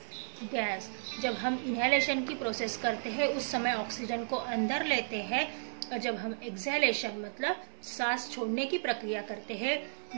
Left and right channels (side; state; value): left; silent; digital silence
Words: gas. जब हम इनहेलेशन की प्रोसेस करते हैं उस समय ऑक्सीजन को अंदर लेते हैं, और जब हम एक्सहेलेशन मतलब सांस छोड़ने की प्रक्रिया करते हैं,